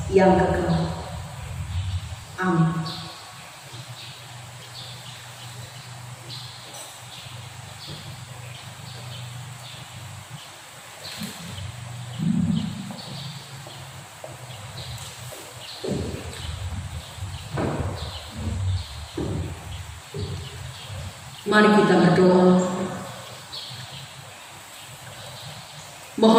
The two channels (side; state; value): both; identical; correlation 1.00